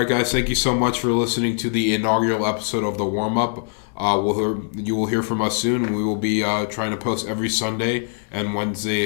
guys. Thank you so much for listening to the inaugural episode of the Warmup. You will hear from us soon, and we will be trying to post every Sunday and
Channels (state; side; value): silent; right; 61 dB below the other